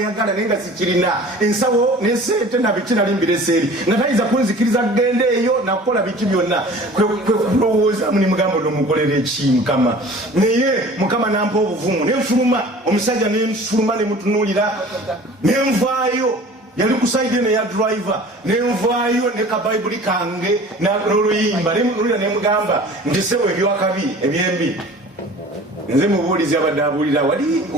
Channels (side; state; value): both; normal; correlation 0.44